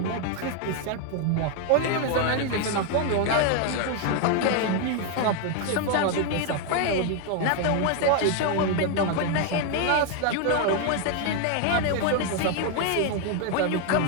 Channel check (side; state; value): both; different; correlation 0.01